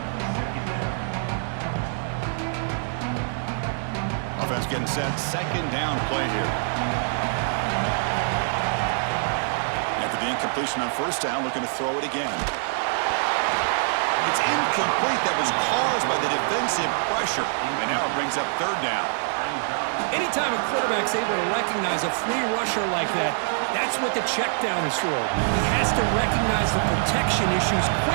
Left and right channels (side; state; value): left; silent; 62 dB below the other